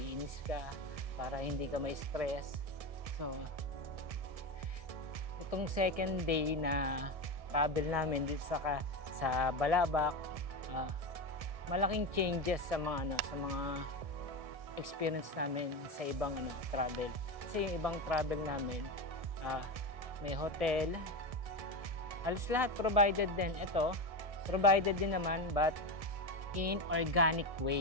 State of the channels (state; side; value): late; left; 1.7 ms